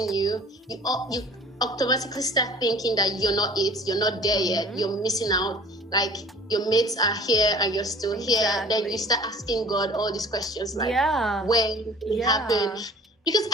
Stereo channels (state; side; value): normal; both; correlation 0.48